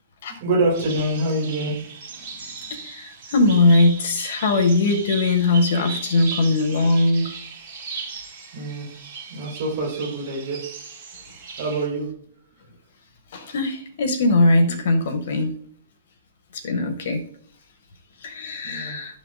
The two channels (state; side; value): inverted; both; correlation -0.63